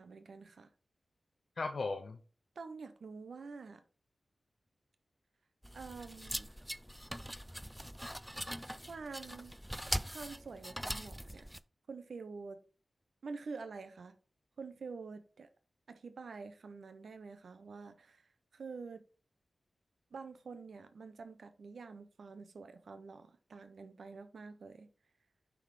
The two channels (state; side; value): normal; both; correlation 0.94